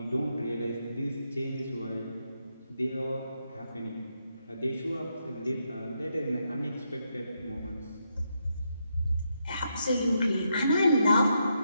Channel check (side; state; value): both; inverted; correlation -0.80